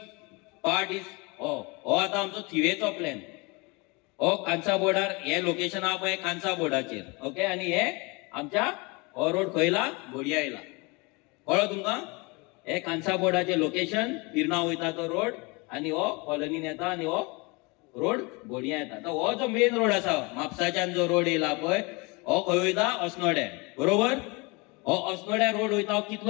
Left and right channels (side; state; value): right; quieter; 27.7 dB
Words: पार्ट इज हो आता आमचो थिवेचो प्लॅन. हो कांसा बोर्डार हे लोकेशन हा पळय कांसा बोर्डाचेर. ओके. आणि हे आमच्या हो रोड खयला बोडया येयला कळ्ळो तुमकां. हे कांसा बोर्डाचे लोकेशन पिर्ना वयता तो रोड आणि हो कॉलनीन येता आणि हो रोड बोडया येता. तर हो जो मेन रोड आसा म्हापसाच्यान जो रोड येयला पळय हो खंय वयता अस्नोड्या बरोबर. हो अस्नोड्या रोड वयता. हो